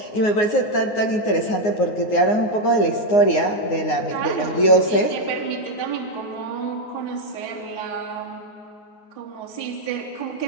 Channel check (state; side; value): late; right; 9.6 ms